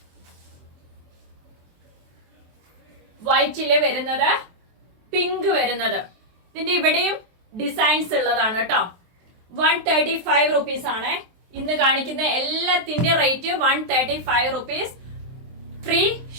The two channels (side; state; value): left; late; 23 ms